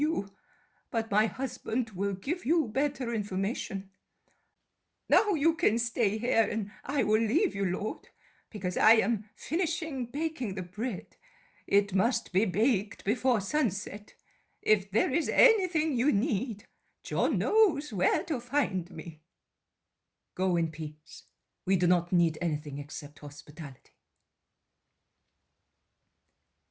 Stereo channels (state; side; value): identical; both; correlation 1.00